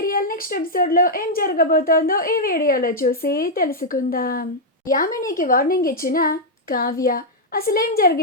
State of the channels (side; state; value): both; normal; correlation -0.04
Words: next ఎపిసోడ్లో ఏం జరగబోతోందో ఈ వీడియోలో చూసి తెలుసుకుందాం. యామినికి వార్నింగ్ ఇచ్చిన కావ్య అసలేం